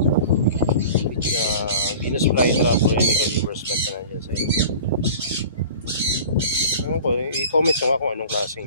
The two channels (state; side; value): inverted; both; correlation -0.41